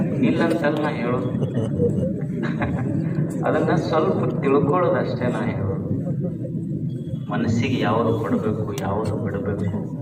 ಇಲ್ಲಂತಲ್ಲ ನಾ ಹೇಳೋದು, ಅದನ್ನ ಸ್ವಲ್ಪ ತಿಳ್ಕೊಳ್ಳೋದು ಅಷ್ಟೇ ನಾ ಹೇಳೋದು. ಮನಸ್ಸಿಗೆ ಯಾವುದು ಕೊಡಬೇಕು, ಯಾವುದು ಬಿಡಬೇಕು.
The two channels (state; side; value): identical; both; correlation 1.00